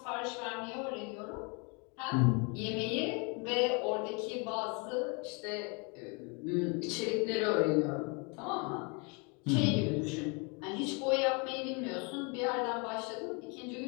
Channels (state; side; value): quieter; right; 32.7 dB